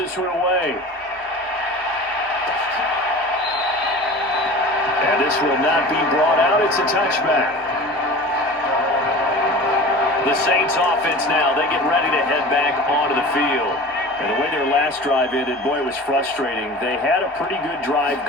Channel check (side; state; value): both; normal; correlation 0.37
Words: one away. And this will not be brought out. It's a touchback. The Saints offense now, they get ready to head back onto the field. And the way their last drive ended, boy, it was frustrating. They had a pretty good drive